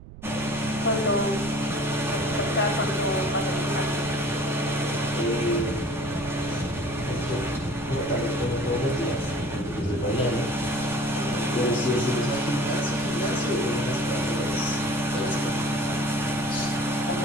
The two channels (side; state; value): right; noise; rumble, 15 dB below the sound